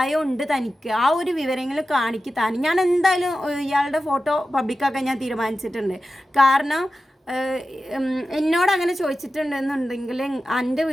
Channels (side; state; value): both; normal; correlation 0.93